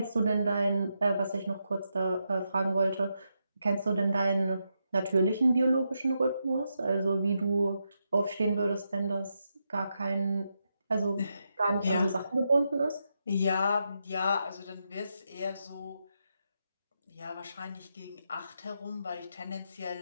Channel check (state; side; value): inverted; both; correlation -0.84